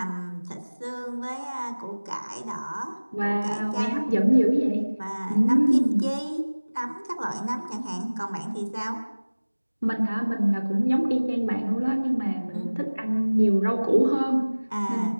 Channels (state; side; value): inverted; both; correlation -1.00